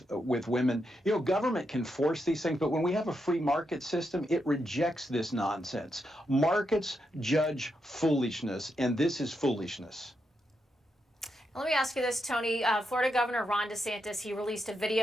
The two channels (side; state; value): both; normal; correlation 0.83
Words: women. You know, government can force these things, but when we have a free market system, it rejects this nonsense. Markets judge foolishness, and this is foolishness. Let me ask you this, Tony. Florida Governor Ron DeSantis, he released a